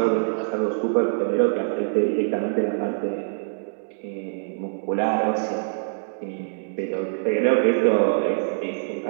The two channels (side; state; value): left; silent; digital silence